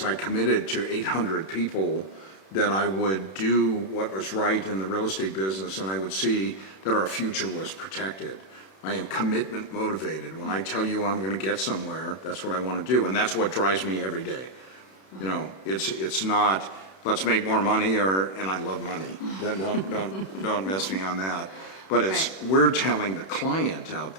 I committed to 800 people that I would do what was right in the real estate business, and I would see that our future was protected. I am commitment motivated. When I tell you I'm going to get somewhere, that's what I want to do, and that's what drives me every day. You know, it's not let's make more money, and I love money. Don't miss me on that. But it's we're telling the client out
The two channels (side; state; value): right; late; 31 ms